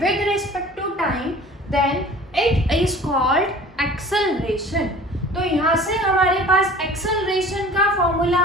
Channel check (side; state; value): both; normal; correlation 0.45